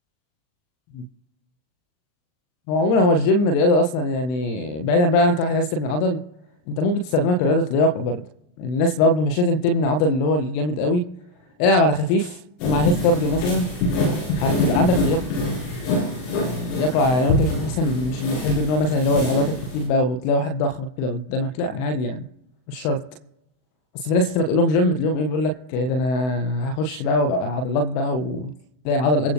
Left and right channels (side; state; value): right; late; 39 ms